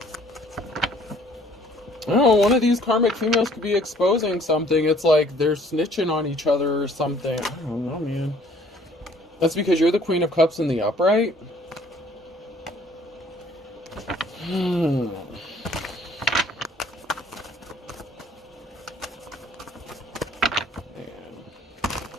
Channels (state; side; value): normal; both; correlation 0.58